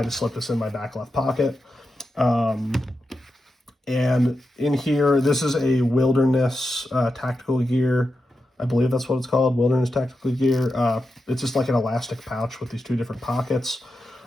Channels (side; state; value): both; normal; correlation 0.89